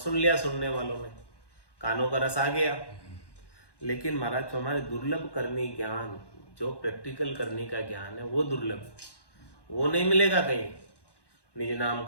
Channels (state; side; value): late; right; 1.1 ms